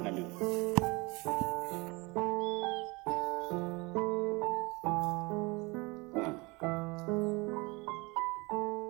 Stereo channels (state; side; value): quieter; left; 25.6 dB